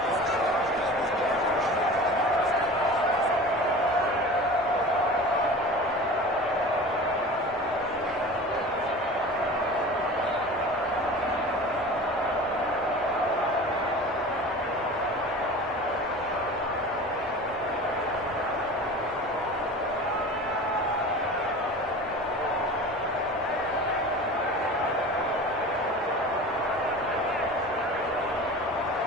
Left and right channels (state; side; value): normal; both; correlation 0.37